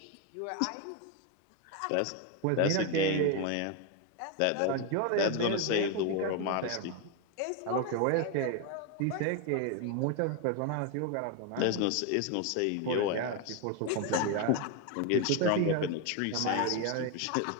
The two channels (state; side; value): different; both; correlation 0.01